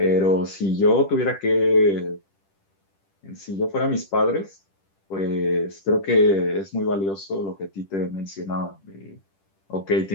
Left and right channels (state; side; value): late; right; 10 ms